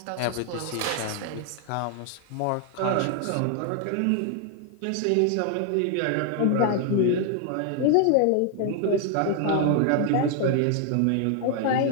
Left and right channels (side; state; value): both; different; correlation 0.00